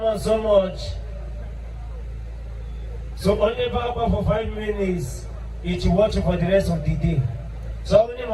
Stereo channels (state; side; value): identical; both; correlation 1.00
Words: so much. So only back for 5 minutes, each watch for the rest of the day. So only